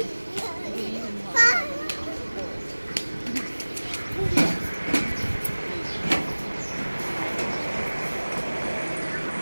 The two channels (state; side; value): inverted; both; correlation -1.00